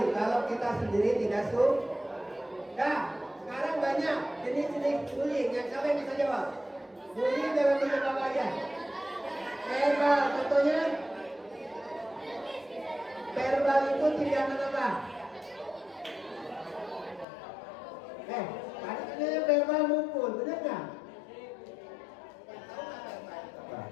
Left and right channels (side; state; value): right; drops out; at 17.2 s